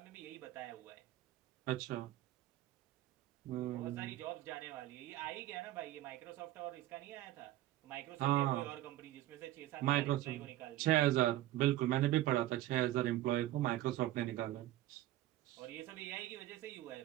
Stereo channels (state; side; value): quieter; left; 15.1 dB